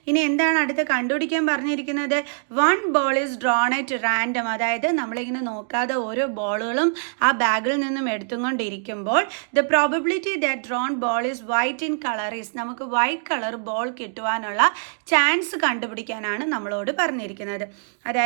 ഇനി എന്താണ് അടുത്ത് കണ്ടുപിടിക്കാൻ പറഞ്ഞിരിക്കുന്നത്? 1 ball is drawn at random. അതായത് നമ്മളിങ്ങനെ നോക്കാതെ ഓരോ ബോളുകളും ആ ബാഗിൽ നിന്നും എടുത്തുകൊണ്ടിരിക്കുമ്പോൾ the probability that drawn ball is white in color is, നമുക്ക് വൈറ്റ് കളർ ബോൾ കിട്ടുവാനുള്ള ചാൻസ് കണ്ടുപിടിക്കാനാണ് നമ്മളോട് പറഞ്ഞിരിക്കുന്നത്.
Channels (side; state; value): left; silent; digital silence